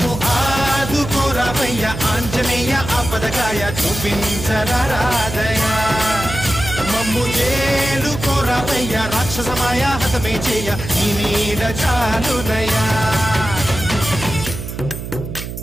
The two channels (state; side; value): noise; right; hum, 8 dB below the sound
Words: ఆదుకోరావయ్య ఆంజనేయ ఆపదకాయ చూపించరాదయ మమ్ము ఏలుకోరావయ్య రాక్షసమాయ హతమే చేయ నీ నీడ చాలునయా